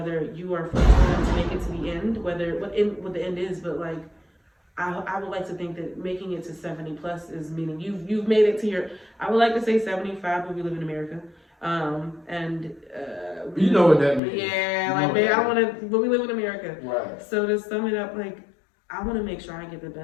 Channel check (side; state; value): right; drops out; at 14.2 s